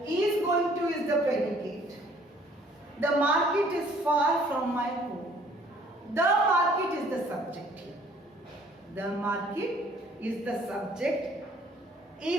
is going to is the predicate. The market is far from my home. The market is the subject here. The market is the subject.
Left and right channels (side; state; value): both; normal; correlation 0.58